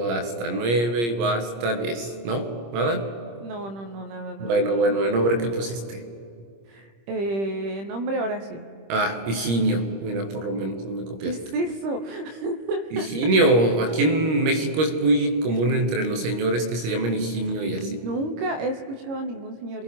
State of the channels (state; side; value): late; left; 25 ms